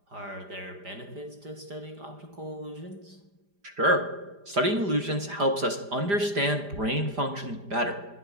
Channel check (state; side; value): late; left; 5.0 ms